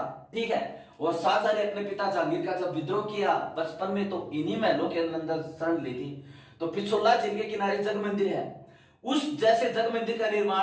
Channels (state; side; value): identical; both; correlation 1.00